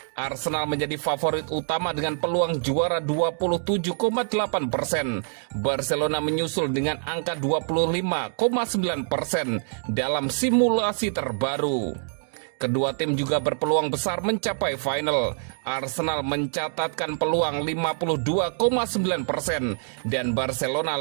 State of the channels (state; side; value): silent; left; digital silence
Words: Arsenal menjadi favorit utama dengan peluang juara 27,8%. Barcelona menyusul dengan angka 25,9% dalam simulasi terbaru. Kedua tim juga berpeluang besar mencapai final. Arsenal mencatatkan peluang 52,9% dan Barcelona